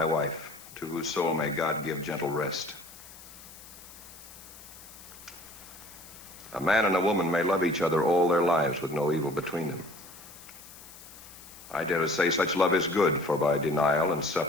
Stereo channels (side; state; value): left; noise; hiss, 18 dB below the sound